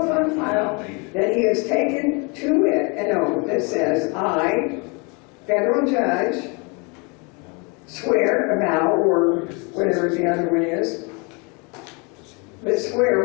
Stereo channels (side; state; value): right; quieter; 31.3 dB